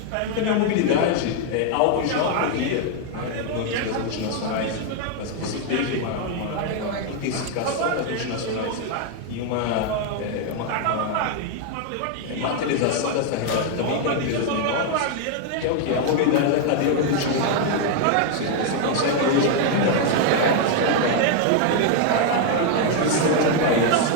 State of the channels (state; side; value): different; both; correlation 0.00